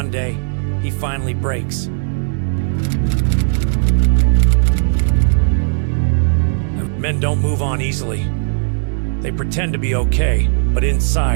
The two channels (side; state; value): left; silent; digital silence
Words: day he finally breaks. Men don't move on easily. They pretend to be okay, but